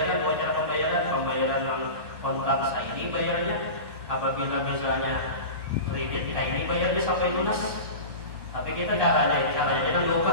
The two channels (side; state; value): left; late; 1.2 ms